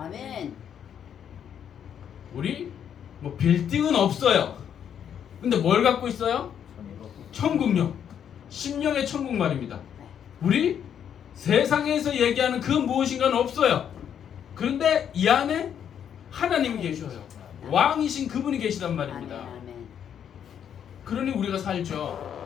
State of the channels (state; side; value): quieter; right; 8.8 dB